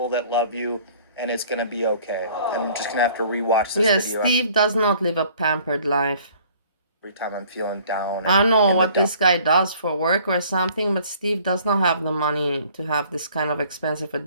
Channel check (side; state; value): both; inverted; correlation -0.55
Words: that love you, and it's going to be okay. I'm just going to have to rewatch this video. Steve does not live a pampered life. Every time I'm feeling down. I don't know what this guy does for work or something, but Steve does not have the money to have this kind of expensive